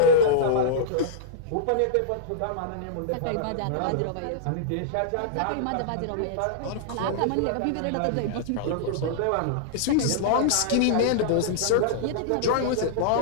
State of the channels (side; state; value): both; different; correlation -0.02